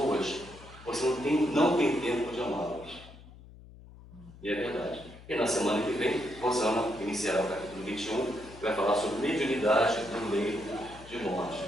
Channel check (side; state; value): left; noise; hum, 19 dB below the sound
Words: você não tem tempo de amá-las. E é verdade. E na semana que vem, Rosana iniciará o capítulo 21, que vai falar sobre mediunidade do leito de morte.